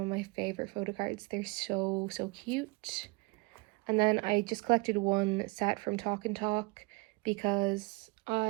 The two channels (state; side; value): quieter; left; 27.8 dB